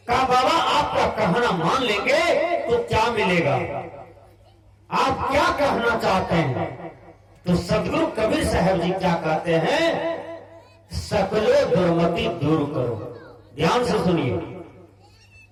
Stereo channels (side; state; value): both; identical; correlation 1.00